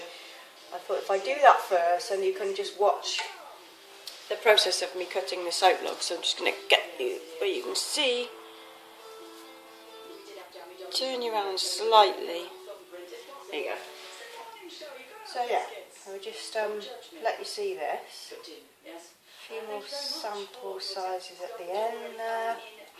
thought if I do that first, then you can just watch the process of me cutting the soap logs. So I'm just going to get you where you can see. Turn you around slightly. There you go. So yeah, I'll just let you see this. A few more sample sizes at the end there.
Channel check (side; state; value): both; identical; correlation 1.00